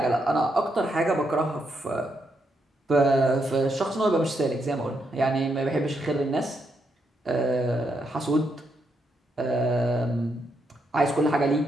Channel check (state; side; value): normal; both; correlation 0.79